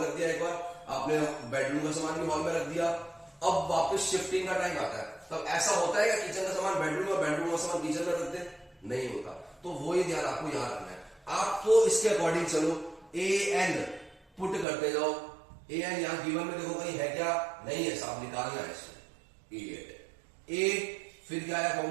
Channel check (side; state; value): left; drops out; at 14.7 s